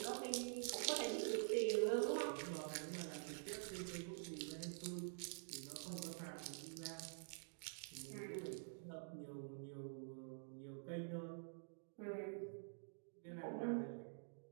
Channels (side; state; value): left; silent; digital silence